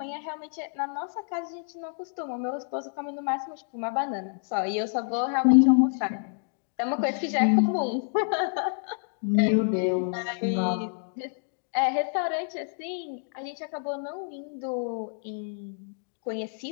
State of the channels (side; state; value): right; silent; digital silence